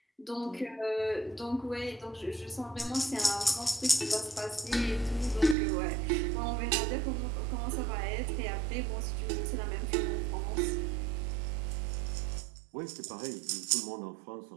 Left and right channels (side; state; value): left; drops out; at 5.6 s